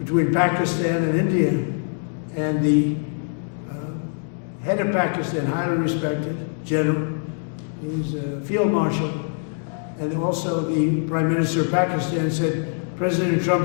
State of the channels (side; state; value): right; silent; 60 dB below the other